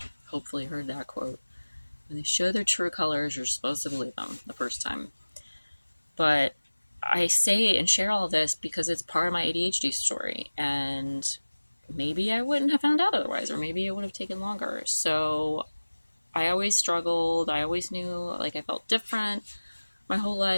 hopefully heard that quote. When they show their true colors, you're supposed to believe them the first time. But I say and share all this because it's part of my ADHD story, and maybe I wouldn't have found out otherwise, or maybe it would have taken longer. So I always struggled. I always knew like I felt different my whole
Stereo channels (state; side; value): inverted; both; correlation -1.00